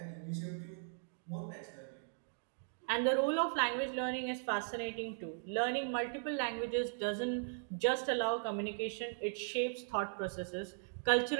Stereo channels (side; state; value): left; silent; digital silence